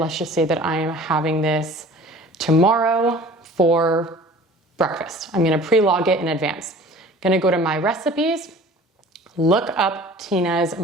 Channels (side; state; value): both; normal; correlation 0.45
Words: just say that I am having this tomorrow for breakfast. I'm gonna pre-log it in advance. Gonna go to my recipes, look up Tina's